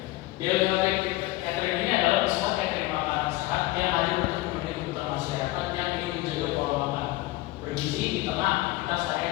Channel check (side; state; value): right; quieter; 19.1 dB